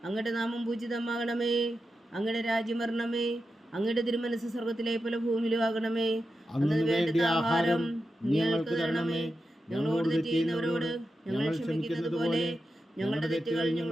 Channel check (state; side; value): normal; both; correlation 0.90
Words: അങ്ങയുടെ നാമം പൂജിതമാകണമേ. അങ്ങയുടെ രാജ്യം വരണമേ. അങ്ങയുടെ തിരുമനസ് സ്വർഗത്തിലെ പോലെ ഭൂമിയിലും ആകണമേ. അന്നു വേണ്ട ആഹാരം ഞങ്ങൾക്ക് തരണമേ. ഞങ്ങളോട് തെറ്റ് ചെയ്യുന്നവരോട് ഞങ്ങൾ ക്ഷമിക്കുന്നത് പോലെ ഞങ്ങളുടെ തെറ്റുകൾ